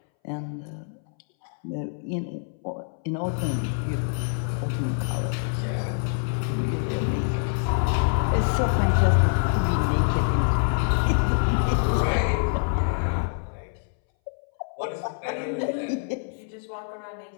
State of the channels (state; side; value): silent; right; 61 dB below the other